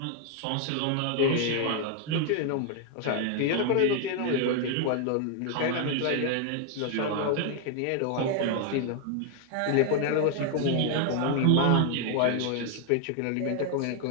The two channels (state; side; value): different; both; correlation 0.01